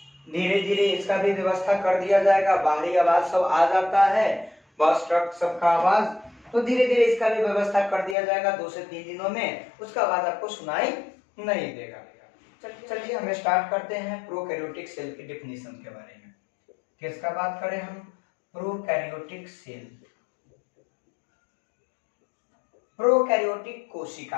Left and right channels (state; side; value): drops out; right; at 8.2 s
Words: धीरे धीरे इसका भी व्यवस्था कर दिया जाएगा। बाहरी आवाज सब आ जाता है, बस ट्रक सबका आवाज, तो धीरे धीरे इसका भी व्यवस्था कर दिया जाएगा। 2 से 3 दिनों में उसका आवाज आपको सुनाई नहीं देगा। चलिए हम स्टार्ट करते हैं प्रोकैरियोटिक सेल की डेफिनेशन के बारे में। किसका बात करें हम? प्रोकैरियोटिक सेल, प्रोकैरियोटिक